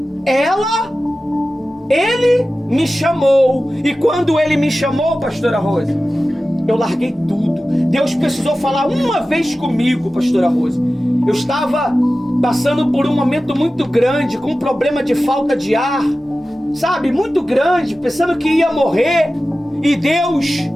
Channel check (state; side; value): normal; both; correlation 0.95